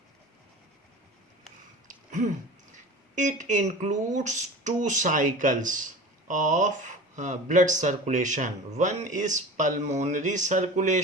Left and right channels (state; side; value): normal; both; correlation 0.36